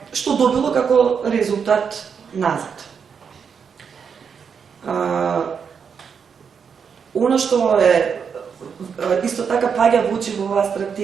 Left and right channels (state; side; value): quieter; left; 6.6 dB